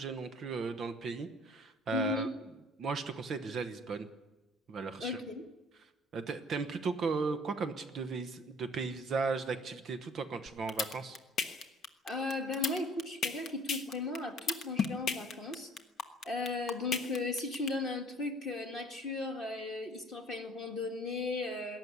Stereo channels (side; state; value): both; normal; correlation 0.53